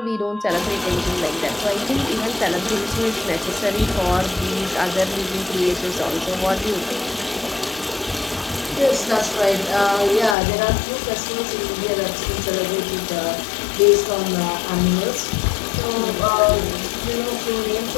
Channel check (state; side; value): drops out; right; at 10.4 s